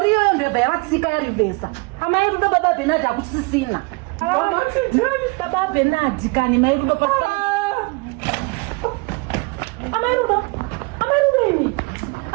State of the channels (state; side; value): quieter; left; 28.4 dB